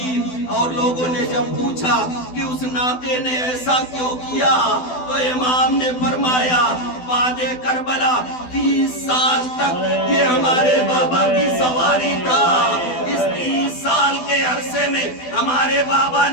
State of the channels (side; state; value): right; late; 12 ms